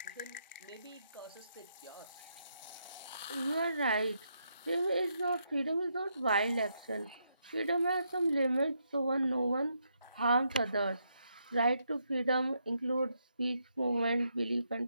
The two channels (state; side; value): inverted; both; correlation -0.78